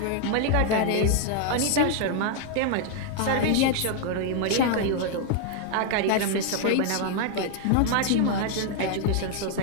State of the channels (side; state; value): both; different; correlation 0.00